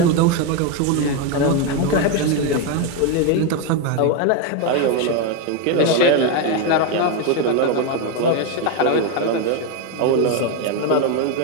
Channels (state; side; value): different; both; correlation 0.02